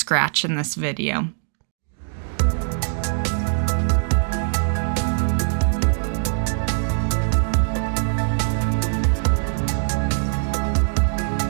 in this video.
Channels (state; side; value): silent; left; digital silence